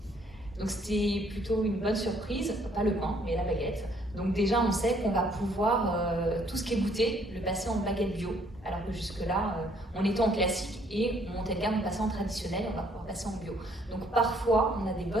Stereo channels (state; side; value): normal; both; correlation 0.64